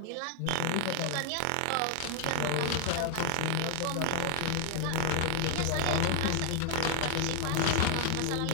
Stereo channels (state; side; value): different; both; correlation 0.00